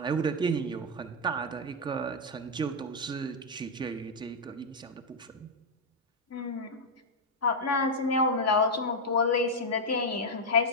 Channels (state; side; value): normal; both; correlation -0.01